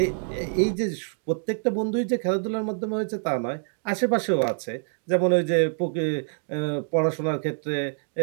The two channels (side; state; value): left; silent; digital silence